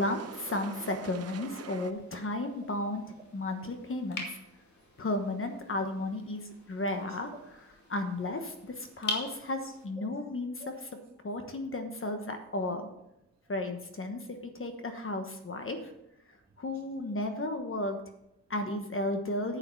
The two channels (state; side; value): normal; both; correlation 0.11